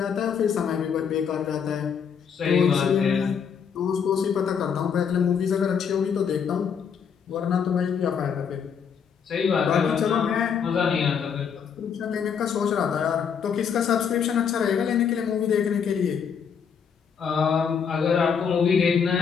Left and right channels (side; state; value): right; quieter; 7.0 dB